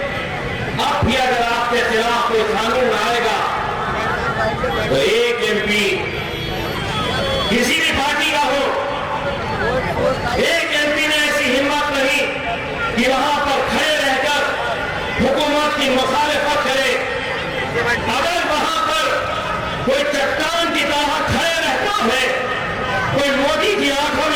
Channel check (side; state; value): both; identical; correlation 1.00